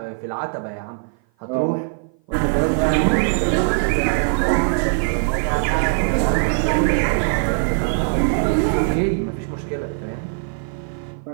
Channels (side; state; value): left; silent; 56 dB below the other